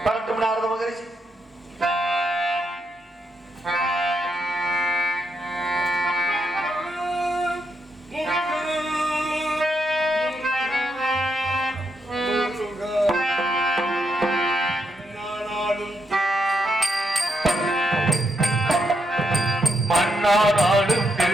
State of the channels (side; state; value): both; normal; correlation 0.80